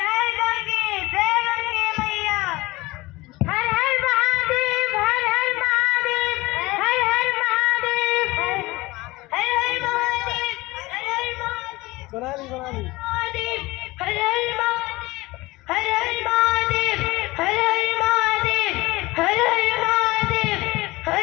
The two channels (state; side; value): quieter; right; 21.0 dB